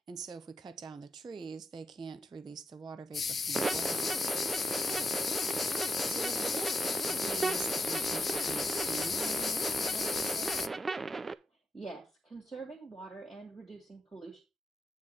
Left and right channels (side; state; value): both; normal; correlation 0.84